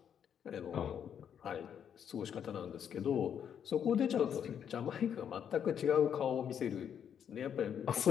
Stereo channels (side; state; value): right; quieter; 8.5 dB